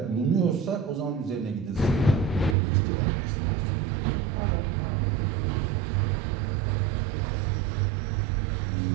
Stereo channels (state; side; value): drops out; left; at 2.6 s